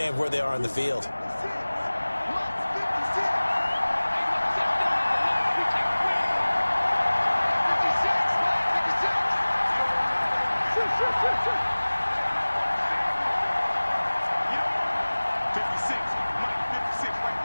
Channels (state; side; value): inverted; both; correlation -1.00